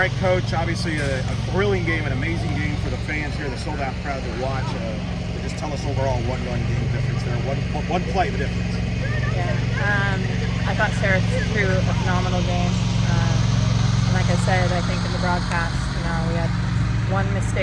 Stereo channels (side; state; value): both; identical; correlation 1.00